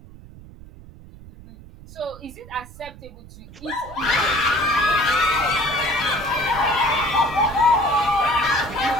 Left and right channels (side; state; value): right; noise; rumble, 18 dB below the sound